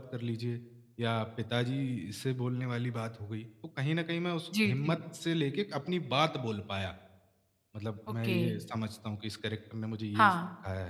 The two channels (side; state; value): both; identical; correlation 1.00